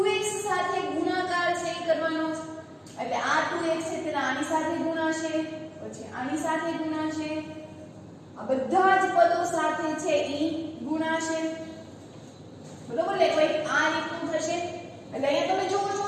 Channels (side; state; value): both; identical; correlation 1.00